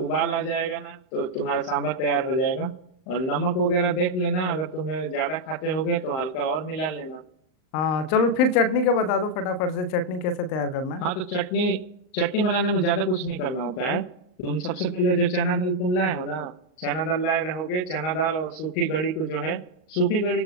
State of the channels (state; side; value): late; right; 38 ms